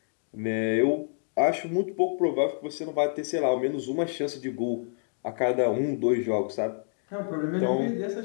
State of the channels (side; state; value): right; silent; digital silence